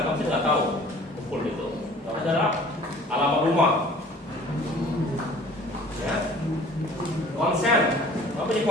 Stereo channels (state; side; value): normal; both; correlation 0.49